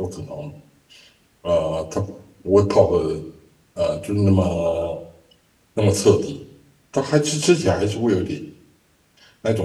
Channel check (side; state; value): both; identical; correlation 1.00